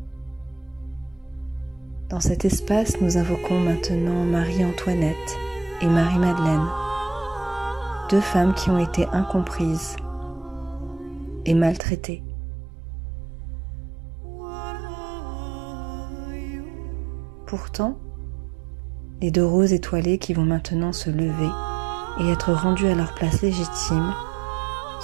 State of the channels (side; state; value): left; drops out; at 11.8 s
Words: Dans cet espace, nous invoquons maintenant Marie-Antoinette et Marie-Madeleine, deux femmes qui ont été incomprises et maltraitées. Pourtant, les deux roses étoilées qui vont maintenant se lever et être rendues à leur place légitime